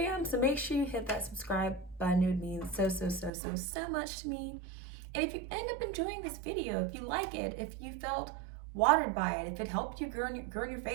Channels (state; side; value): drops out; left; at 3.3 s